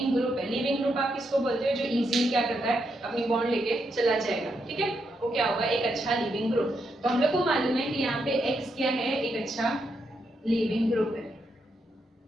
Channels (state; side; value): normal; both; correlation 0.81